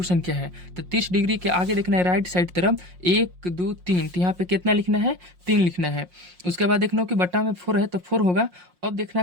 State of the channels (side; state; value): left; late; 5.6 ms